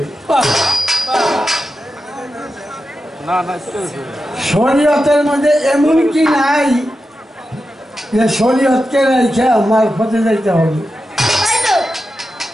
শরীয়তের মধ্যে এমন কি নাই যে শরীয়তকে রেখে মারফতে যাইতে হবে?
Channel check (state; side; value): normal; both; correlation 0.90